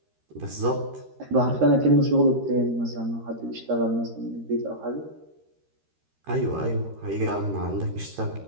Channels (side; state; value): left; late; 13 ms